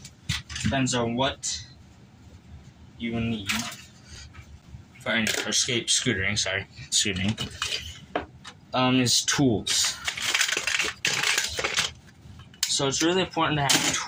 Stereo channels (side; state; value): both; identical; correlation 1.00